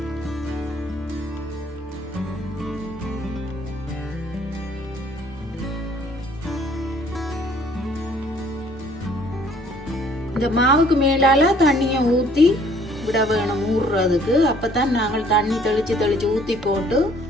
இந்த மாவுக்கு மேலால தண்ணியை ஊத்தி விட வேணும் ஊறுறதுக்கு. அப்பதான் நாங்கள் தண்ணி தெளிச்சு தெளிச்சு ஊத்தி போட்டு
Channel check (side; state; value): both; normal; correlation 0.59